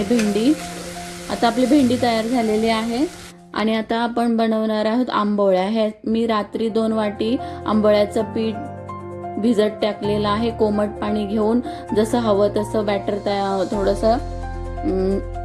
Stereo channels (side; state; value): both; identical; correlation 1.00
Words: आता आपली भेंडी तयार झालेली आहे। आणि आता आपण बनवणार आहोत आंबोळ्या। हे मी रात्री 2 वाटी आंबोळ्याचं पीठ भिजत टाकलेलं आहे। कोमट पाणी घेऊन जसं हवं तसं बॅटर थोडंसं